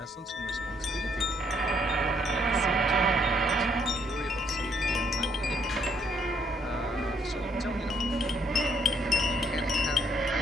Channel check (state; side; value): normal; both; correlation 0.69